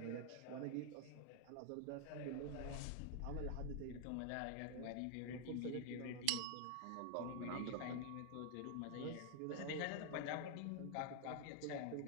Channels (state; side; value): different; both; correlation 0.00